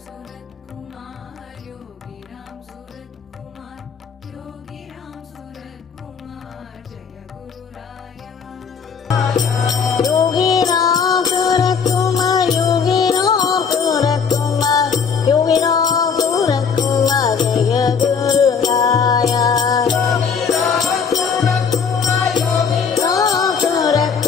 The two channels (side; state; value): right; quieter; 6.2 dB